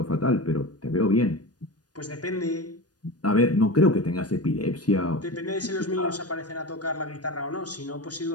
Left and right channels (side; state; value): right; late; 0.69 ms